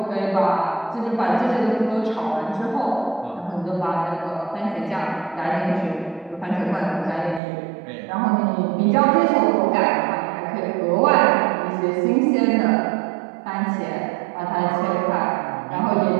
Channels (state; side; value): drops out; left; at 7.4 s